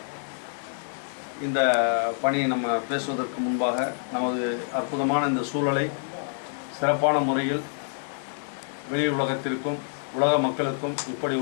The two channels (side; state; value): right; silent; digital silence